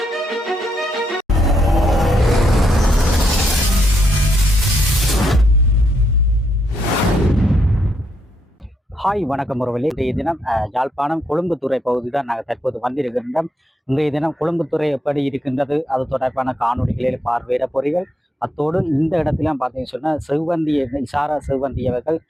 ஹாய் வணக்கம் உறவுகளே. இன்றைய தினம் யாழ்ப்பாணம் கொழும்புத்துறை பகுதி தான் நாங்கள் தற்போது வந்திருக்கின்றோம். இன்றைய தினம் கொழும்புத்துறை எப்படி இருக்கின்றது அது தொடர்பான காணொலிகளில் பார்வையிட போறீர்கள். அத்தோடு இந்த இடத்திலாம் பார்த்தீங்கன்னு சொன்னால் செவ்வந்தி இசாரா செவ்வந்தி அவர்கள்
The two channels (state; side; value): normal; both; correlation 0.79